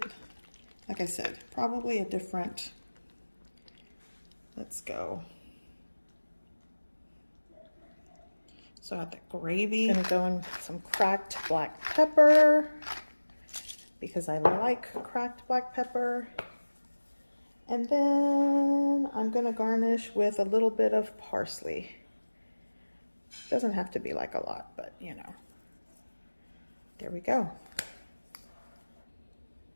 like I said, probably a different, let's go. So I got the gravy. Gonna go in with some cracked black pepper because I like cracked black pepper. And then I'm gonna garnish with a little bit of parsley. Doesn't have to be like a lot, but you know. There we go.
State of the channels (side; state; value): both; inverted; correlation -1.00